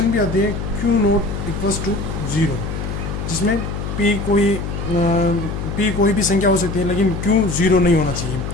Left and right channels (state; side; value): noise; left; hum, 5 dB below the sound